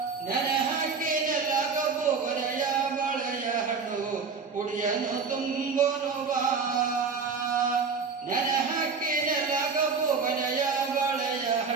ನೆನೆ ಹಾಕಿನೆಲ್ಲ ಕಬ್ಬು ಕೊನೆಯ ಬಾಳೆಯ ಹಣ್ಣು ಕುಡಿಯನು ತುಂಬೋನು ಬಾ, ನೆನೆ ಹಾಕಿನೆಲ್ಲ ಕಬ್ಬು ಕೊನೆಯ ಬಾಳೆಯ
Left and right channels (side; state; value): left; quieter; 5.2 dB